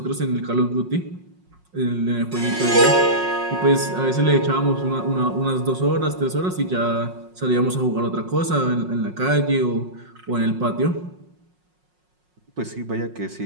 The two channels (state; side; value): late; left; 5.5 ms